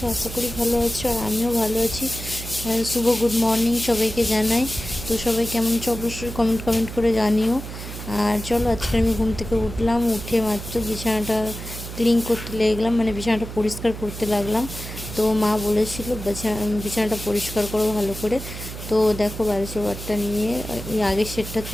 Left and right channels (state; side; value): noise; right; hum, 10 dB below the sound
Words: আশা করি ভালো আছো, আর আমিও ভালো আছি। শুভ গুড মর্নিং সবাইকে জানাই। তো সবাই কেমন আছো অবশ্যই কমেন্ট করে জানিও। আর চলো, আজকে আমি ঘুম থেকে উঠলাম, উঠে মাত্র বিছানাটা ক্লিন করতে লেগলাম, মানে বিছানাটা পরিষ্কার করতে লাগলাম। তো মা বলেছিল বিছানাটা পরিষ্কার করো ভালো করে। তো দেখো, বালিশের ওয়ারটা নিয়ে ওই আগের সেটটা